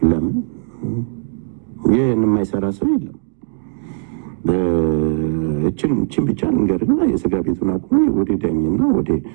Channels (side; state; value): left; silent; digital silence